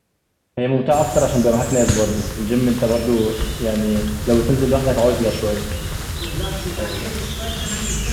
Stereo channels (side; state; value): both; identical; correlation 1.00